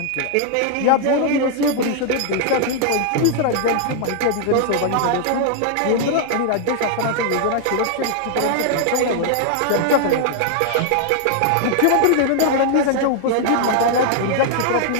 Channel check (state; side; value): different; both; correlation 0.00